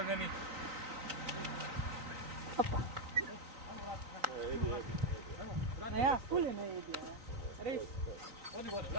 Opa. A ja, ful je na Edija. Res. Odi gore,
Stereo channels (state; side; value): late; left; 3.9 ms